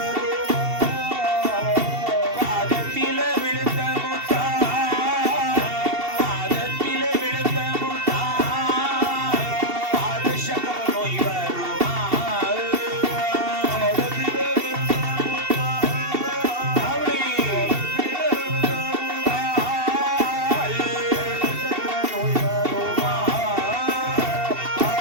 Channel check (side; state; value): left; late; 2.7 ms